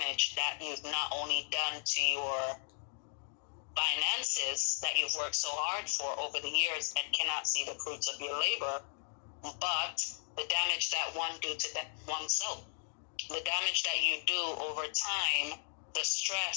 that you've not only done to your finances that you've worked so hard for over the years and cannot see the fruits of your labor, but the damage that one do to oneself, the damage that you do over time, the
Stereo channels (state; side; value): silent; right; digital silence